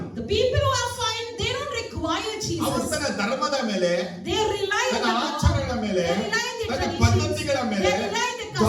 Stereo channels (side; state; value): both; identical; correlation 1.00